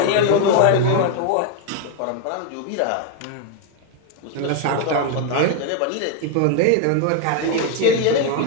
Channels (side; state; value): both; different; correlation 0.00